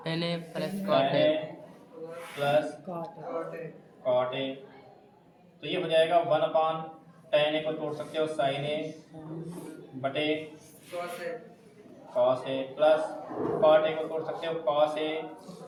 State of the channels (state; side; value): identical; both; correlation 1.00